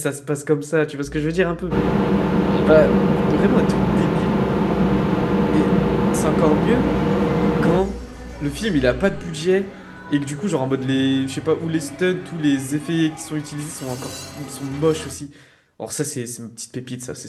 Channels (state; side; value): identical; both; correlation 1.00